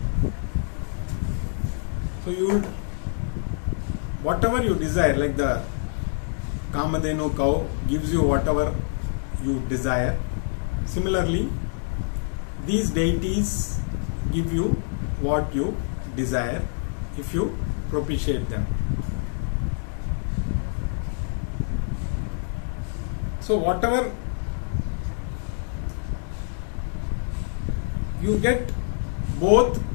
So whatever you desire, like the Kamadhenu cow gives you whatever you desire. Similarly, these deities give you what you desire if you propitiate them. So whatever you get, both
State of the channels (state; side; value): silent; right; 61 dB below the other